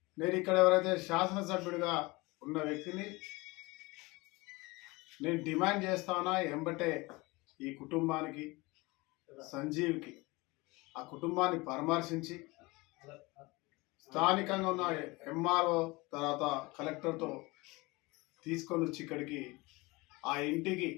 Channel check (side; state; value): right; quieter; 23.6 dB